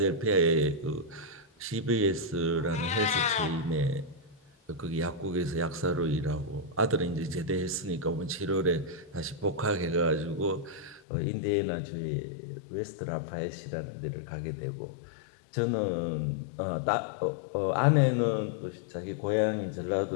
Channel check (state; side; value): drops out; right; at 11.0 s